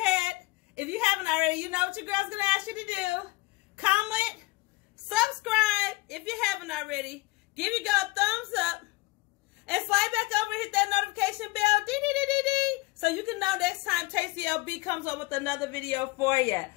If you haven't already, you know what your girl's going to ask you to do. Comment, subscribe if you haven't already. Give your girl a thumbs up. And slide back over and hit that notification bell. Dee-dee-dee-dee-dee. So you can know next time Tasty LB comes up with another video for you.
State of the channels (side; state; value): right; quieter; 22.6 dB